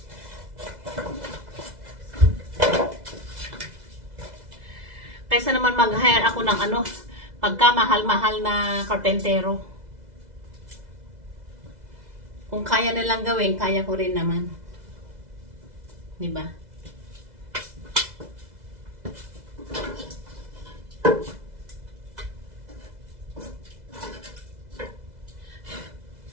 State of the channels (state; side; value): late; left; 2.0 ms